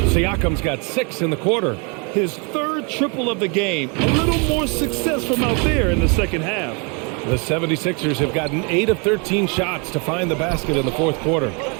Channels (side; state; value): left; quieter; 33.8 dB